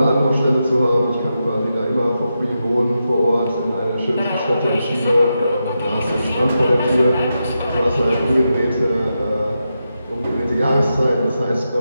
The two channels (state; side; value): inverted; both; correlation -0.87